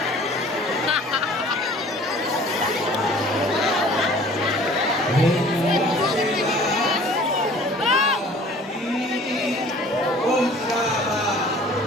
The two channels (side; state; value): both; normal; correlation 0.49